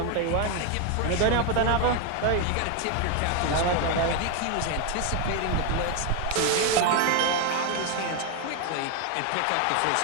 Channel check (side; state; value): both; different; correlation 0.01